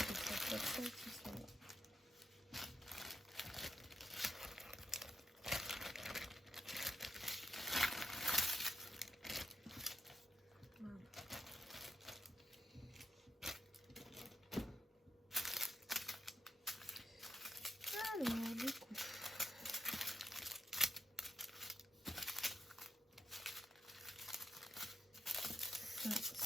160 qui sont là. Alors, du coup, ça,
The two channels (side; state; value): both; normal; correlation 0.83